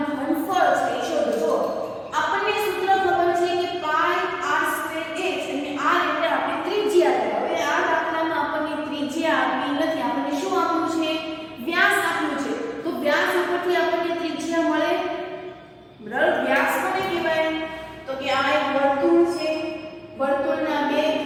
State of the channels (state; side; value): identical; both; correlation 1.00